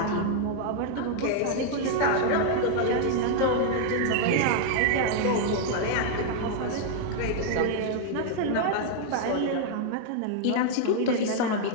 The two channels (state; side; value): different; both; correlation 0.00